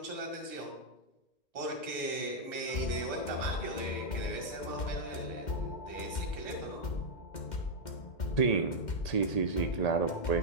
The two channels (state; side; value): late; right; 2.1 ms